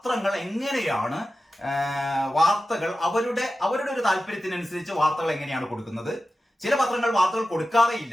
എങ്ങനെയാണ് വാർത്തകൾ അവരുടെ ഒരു താല്പര്യത്തിനനുസരിച്ച് വാർത്തകൾ എങ്ങനെയാണ് കൊടുക്കുന്നത്. ചില പത്രങ്ങൾ വാർത്തകൾ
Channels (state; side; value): normal; both; correlation 0.94